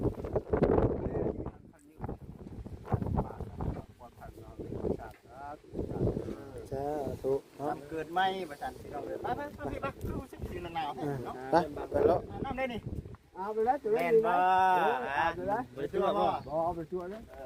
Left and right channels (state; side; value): identical; both; correlation 1.00